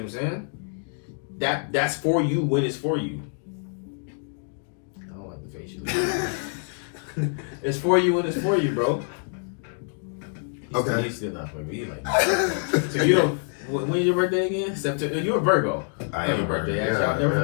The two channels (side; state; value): right; silent; 56 dB below the other